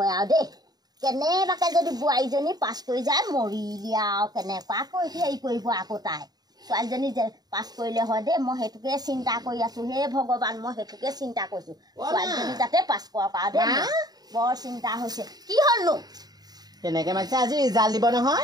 আৰু দেই কেনেবাকে যদি বোৱাৰীজনী পাছ কৰি যায় মৰিলি আৰু কেনেকুৱাকৈ হেৰি কৰিব আকৌ তাই ছোৱালীজনী পাছ কৰিলে হয় দেই মই সেইটোকে চিন্তা কৰি আছোঁ হে ভগৱান মই সেইটোকে চিন্তা কৰিছোঁ ছোৱালীজনী যাতে পাছ কৰক আৰু দেই বৰ চিন্তা হৈছে কি হ'লনো কেনেকৈ মাতিছে আজি ৰিজাল্ট দিব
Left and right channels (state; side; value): late; left; 0.19 ms